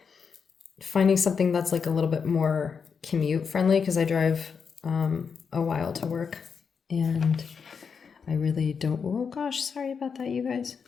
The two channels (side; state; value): right; quieter; 6.1 dB